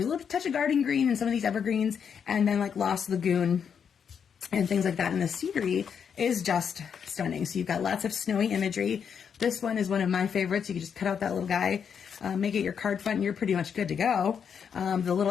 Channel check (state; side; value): quieter; right; 7.2 dB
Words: a little touch of garden green and some of these evergreens, and then like Lost Lagoon and things like that. And the scenery is just stunning. So you've got lots of snowy imagery. This one is one of my favorites. You can just cut out that little guy, make it your card front, and you're pretty much good to go. The